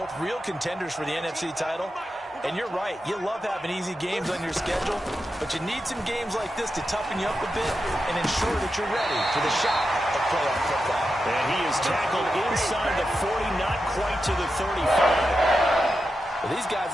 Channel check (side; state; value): both; normal; correlation 0.89